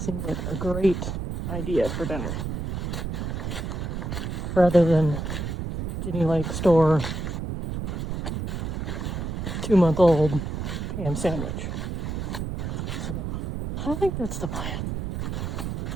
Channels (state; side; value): noise; right; rumble, 3 dB below the sound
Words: like a great idea for dinner. Rather than Ginny Lake store 2-month-old ham sandwich. So, I think that's the plan.